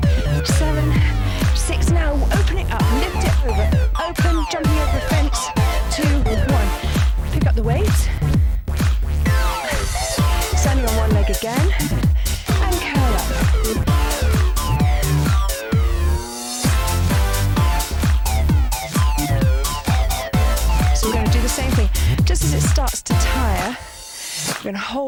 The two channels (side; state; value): both; identical; correlation 1.00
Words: 7, 6. Now open it up, lift it over. Open, jumping over the fence. 2, 1. Pick up the weights. Standing on one leg again. And curl up. So we're going to do the same thing. Just as it starts to tire, we're going to